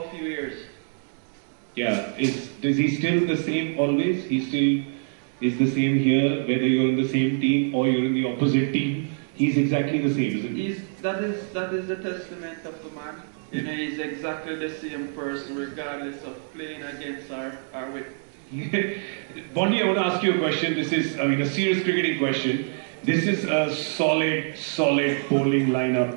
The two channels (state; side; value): silent; left; 61 dB below the other